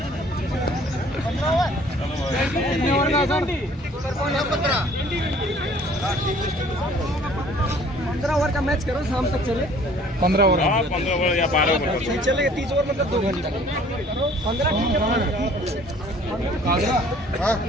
पंद्रह ओवर का मैच करो, शाम तक चले। 15 ओवर। हाँ 15 ओवर या 12 ओवर। चलेगा 30 ओवर मतलब 2 घंटा। 15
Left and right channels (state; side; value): normal; both; correlation 0.54